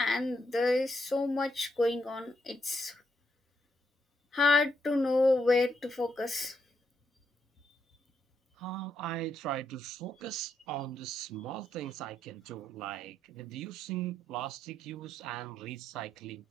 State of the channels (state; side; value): normal; both; correlation 0.78